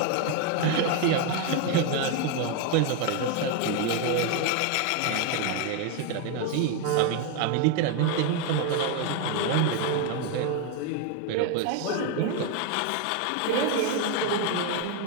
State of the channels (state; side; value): different; both; correlation 0.02